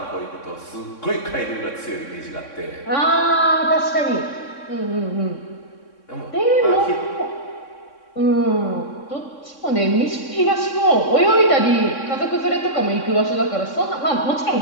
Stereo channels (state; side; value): late; right; 3.6 ms